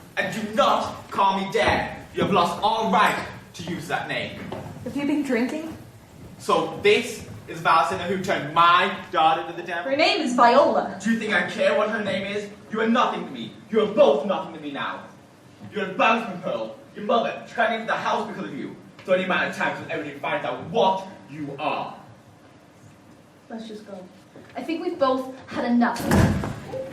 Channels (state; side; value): identical; both; correlation 1.00